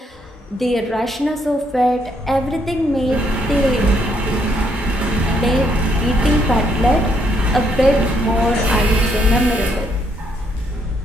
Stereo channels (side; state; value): both; normal; correlation 0.73